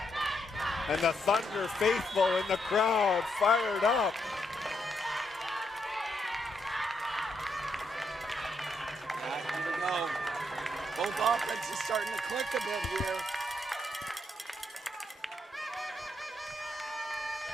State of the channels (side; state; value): both; normal; correlation 0.78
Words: And the Thunder faithful in the crowd fired up. Here we go. Both offenses starting to click a bit here.